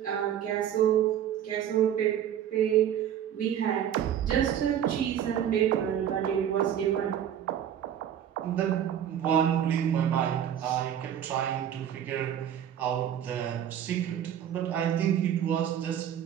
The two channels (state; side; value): quieter; left; 9.8 dB